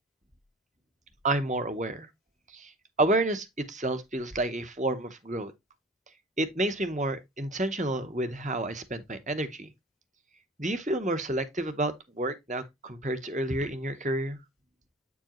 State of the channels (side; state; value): both; normal; correlation 0.40